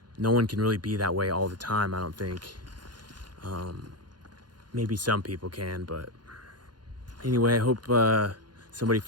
no one can really be that way all the time, I don't think. Maybe some people can, but anyway, I hope somebody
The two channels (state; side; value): late; left; 0.71 ms